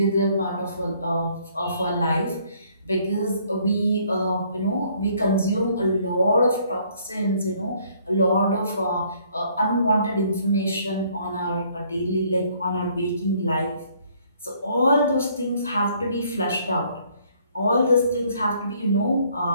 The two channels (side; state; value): both; inverted; correlation -0.63